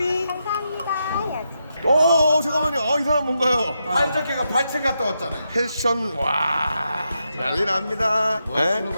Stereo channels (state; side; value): inverted; both; correlation -0.84